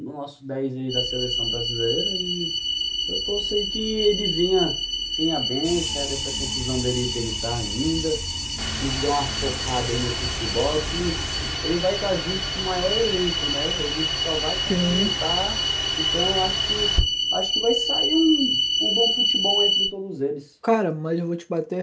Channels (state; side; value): identical; both; correlation 1.00